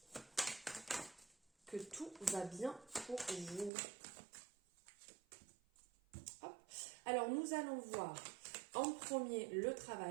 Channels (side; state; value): left; drops out; at 3.7 s